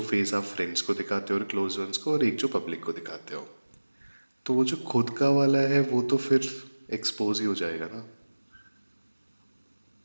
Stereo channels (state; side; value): inverted; both; correlation -1.00